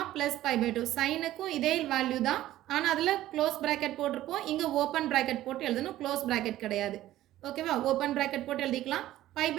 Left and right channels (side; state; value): left; quieter; 14.4 dB